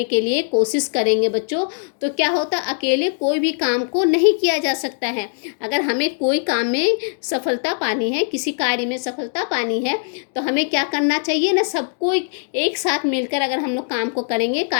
के लिए कोशिश करेंगे बच्चों, तो क्या होता, अकेले कोई भी काम को नहीं किया जा सकता है। अगर हमें कोई काम में सफलता पानी है, किसी कार्य में सफलता पानी है, तो हमें क्या करना चाहिए ना, सबको एक साथ मिलकर अगर हम लोग काम को करेंगे,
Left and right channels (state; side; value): silent; right; 61 dB below the other